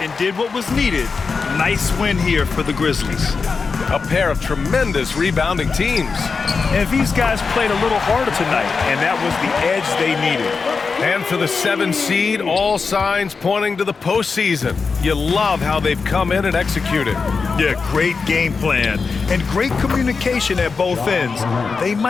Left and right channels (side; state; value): right; quieter; 4.9 dB